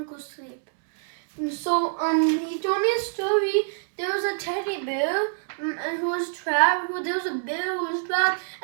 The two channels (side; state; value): left; silent; digital silence